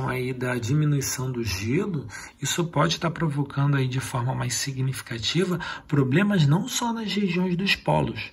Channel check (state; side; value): identical; both; correlation 1.00